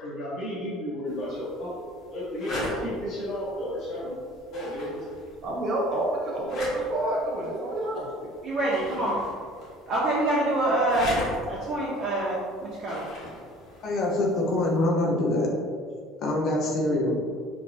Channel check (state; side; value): normal; both; correlation 0.49